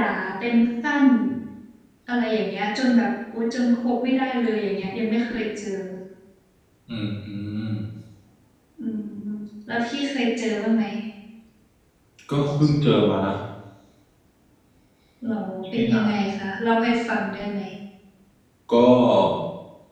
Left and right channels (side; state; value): both; identical; correlation 1.00